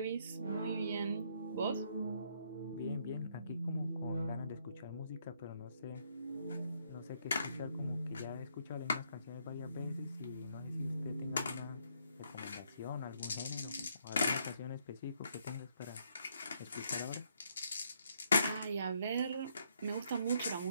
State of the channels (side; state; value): both; inverted; correlation -0.72